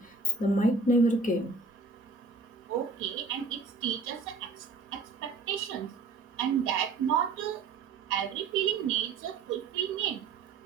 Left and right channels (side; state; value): left; quieter; 4.2 dB